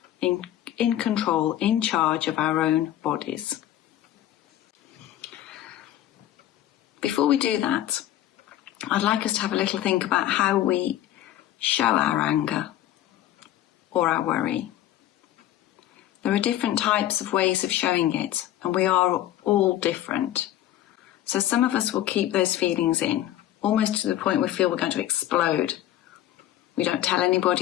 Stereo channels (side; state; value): right; quieter; 13.0 dB